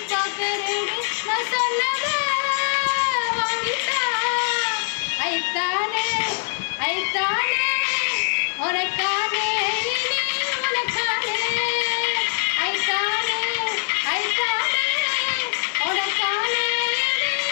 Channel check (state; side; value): silent; right; 63 dB below the other